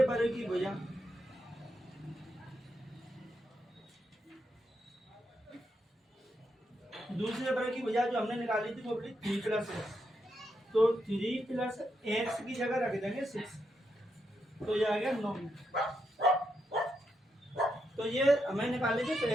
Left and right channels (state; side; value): normal; both; correlation 0.82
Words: वर्ग की भुजा, दूसरे वर्ग की भुजा जो हमने निकाली थी वो बोली 3 प्लस एक्स, तो 3 प्लस एक्स की जगह रख देंगे 6, तो ये आ गया 9 मीटर। तो ये हमें निकाली थी